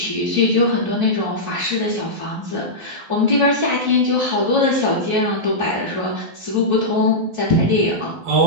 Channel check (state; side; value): late; left; 12 ms